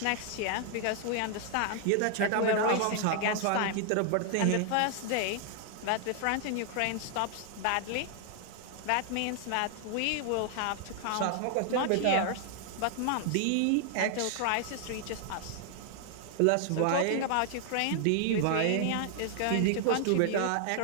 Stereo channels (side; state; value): both; different; correlation 0.00